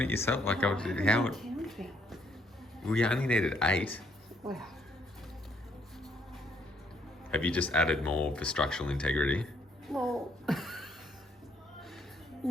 it yourself. Like, how? We only needed 8. Well, Have you just added more for structural integrity? well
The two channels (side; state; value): both; normal; correlation 0.69